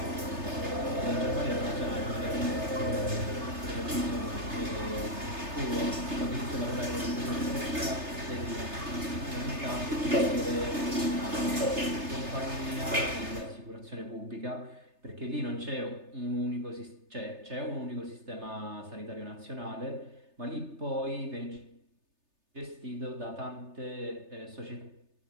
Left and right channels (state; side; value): late; left; 3.3 ms